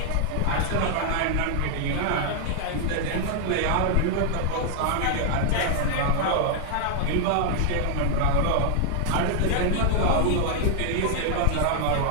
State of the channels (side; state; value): both; different; correlation 0.00